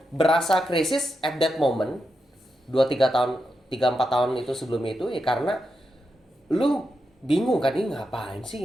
berasa krisis at that moment 2-3 tahun, 3-4 tahun itu sebelumnya itu ya karena lu bingung kan ini ngapain sih,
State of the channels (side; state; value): both; normal; correlation 0.86